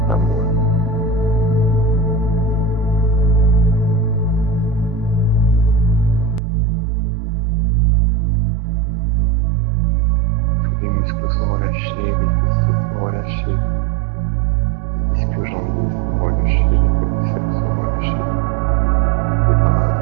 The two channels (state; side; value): drops out; left; at 6.4 s